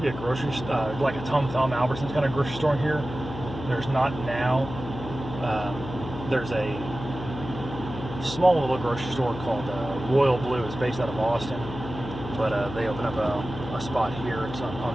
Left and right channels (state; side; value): noise; left; hum, 10 dB below the sound